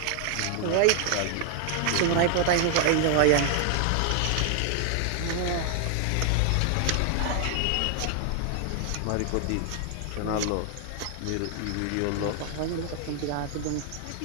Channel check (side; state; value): both; different; correlation 0.00